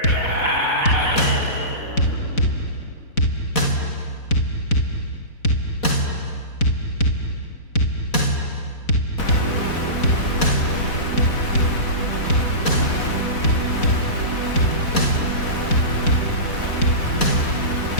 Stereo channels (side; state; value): right; late; 4.1 ms